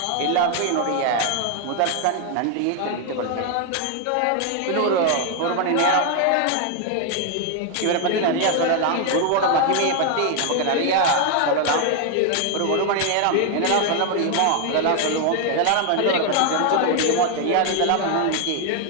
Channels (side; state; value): both; different; correlation 0.01